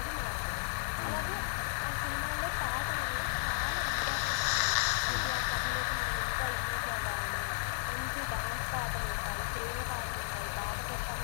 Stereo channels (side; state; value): right; silent; digital silence